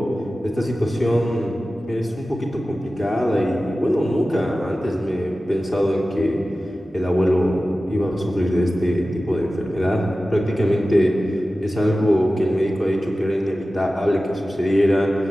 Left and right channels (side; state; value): both; normal; correlation 0.95